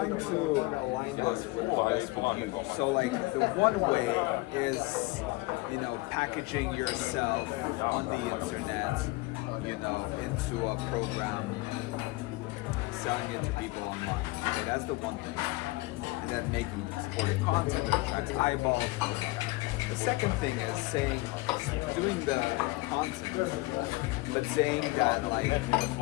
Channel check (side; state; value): right; quieter; 22.3 dB